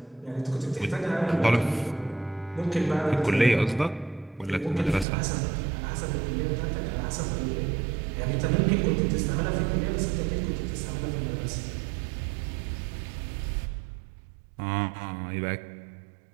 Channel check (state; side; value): drops out; left; at 5.1 s